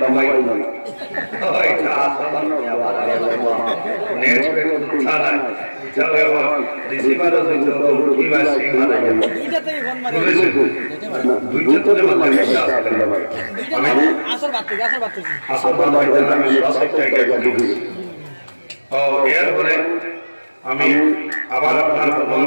ওইটা আসলে আবার নেট পে কথা নাই চলে আমার রিসিভারও হইতো কি ভাই সিগনাল আইয়া দুইটাতেই ফোন মারি দুইটাতে মানে আসলে আমি আসল বাত আমি সবটা গেছি ও এরপরে আমি আবার আপনার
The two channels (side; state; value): both; inverted; correlation -1.00